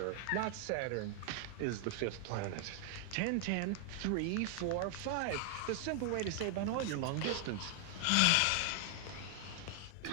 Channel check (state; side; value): different; both; correlation 0.00